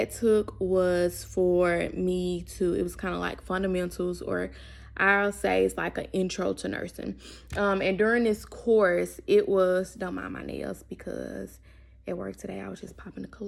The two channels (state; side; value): identical; both; correlation 1.00